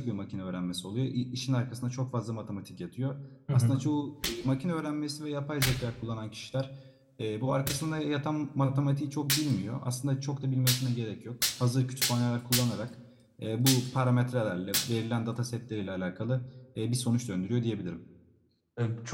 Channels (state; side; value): identical; both; correlation 1.00